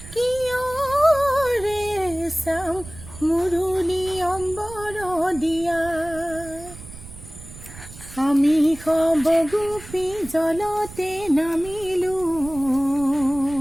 कियो रे सम मुरुली अम्बर दिया আমি সবগোপী জলতে নামিলো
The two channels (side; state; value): right; noise; rumble, 15 dB below the sound